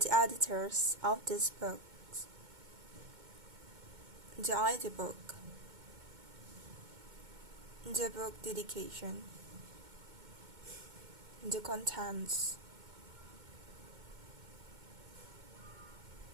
editors of this book. The ID book. The book dedication. The contents.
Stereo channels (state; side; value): late; left; 2.2 ms